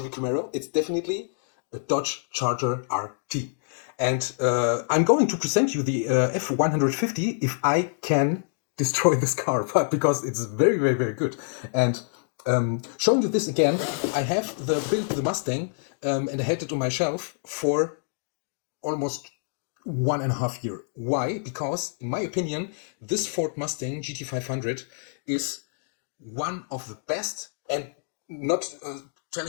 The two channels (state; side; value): silent; right; digital silence